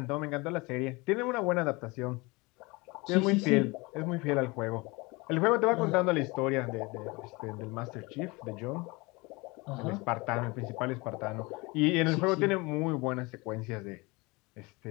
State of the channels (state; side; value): quieter; right; 25.0 dB